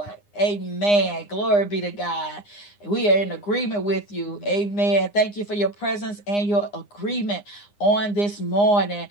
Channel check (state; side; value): late; right; 9.8 ms